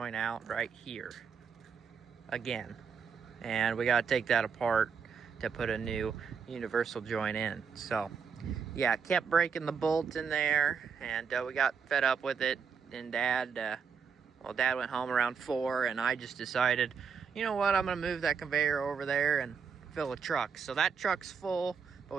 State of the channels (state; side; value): quieter; left; 6.3 dB